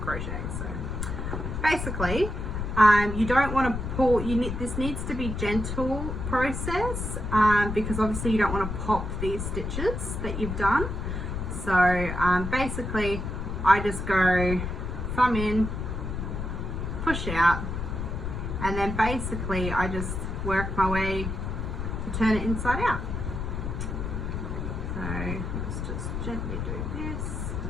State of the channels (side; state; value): left; noise; rumble, 4 dB below the sound